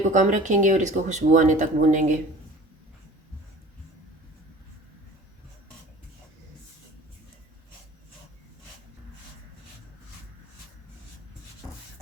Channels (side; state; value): both; normal; correlation 0.44